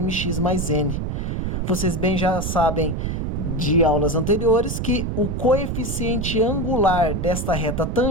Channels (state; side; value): noise; right; rumble, 2 dB below the sound